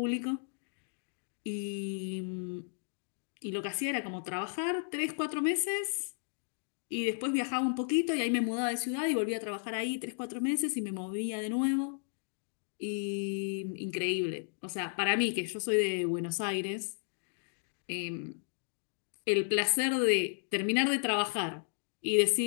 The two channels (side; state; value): right; silent; digital silence